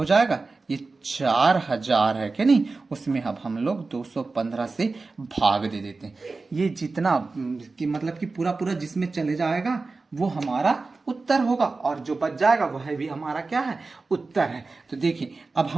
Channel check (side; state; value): left; quieter; 3.8 dB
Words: जाएगा? ये 4000 है क्या नहीं? उसमें अब हम लोग 215 से भाग दे देते हैं। ये जितना कि मतलब कि पूरा पूरा जिसमें चले जाएगा वो हमारा उत्तर होगा, और जो बच जाएगा वह भी हमारा क्या है? उत्तर है। तो देखिए अब